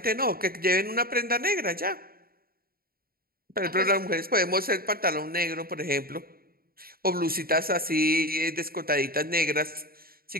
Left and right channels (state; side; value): late; left; 0.43 ms